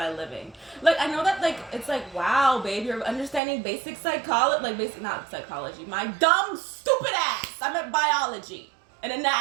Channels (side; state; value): left; drops out; at 3.4 s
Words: living. Like, I know that like it's like, wow, babe, you're understanding basic psychology, like basic, not psychology, my dumb stupid ass. I meant biology and